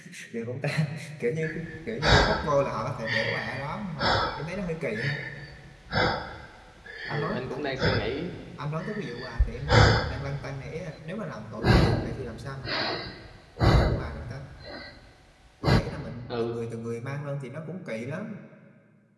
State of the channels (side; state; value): both; identical; correlation 1.00